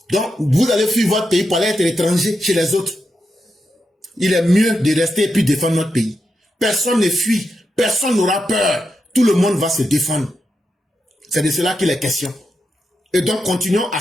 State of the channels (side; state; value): both; normal; correlation 0.86